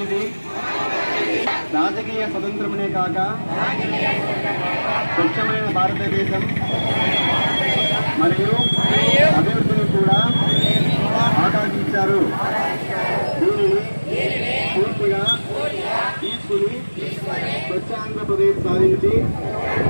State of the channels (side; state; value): both; inverted; correlation -1.00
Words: రాజకీయ స్వతంత్రమునే కాక స్వచ్ఛమైన భారతదేశం మరియు అభివృద్ధిని కూడా ఆకాంక్షించారు. దీనిని పూర్తిగా తీసుకుని స్వచ్ఛ ఆంధ్రప్రదేశ్ సాధించి